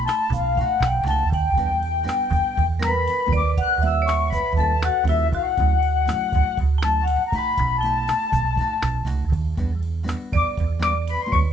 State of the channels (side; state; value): both; normal; correlation 0.74